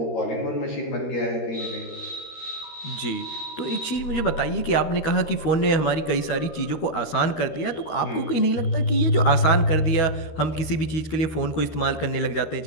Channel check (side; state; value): right; late; 13 ms